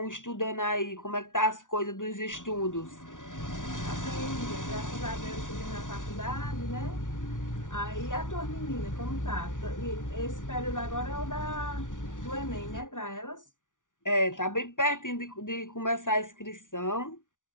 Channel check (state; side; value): late; right; 0.87 ms